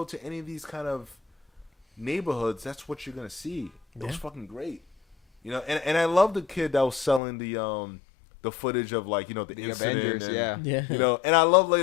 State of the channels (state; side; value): drops out; right; at 7.2 s